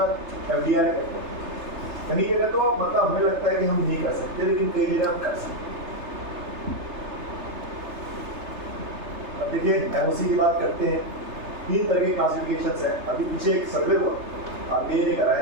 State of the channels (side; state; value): left; late; 3.3 ms